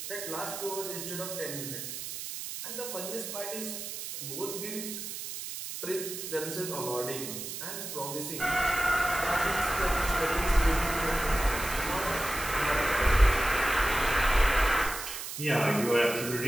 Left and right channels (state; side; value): noise; right; hiss, 7 dB below the sound